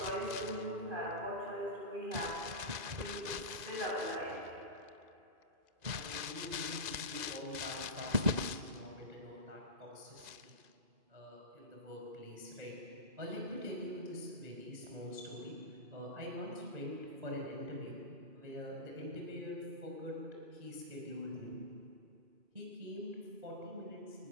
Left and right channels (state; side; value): late; left; 2.0 ms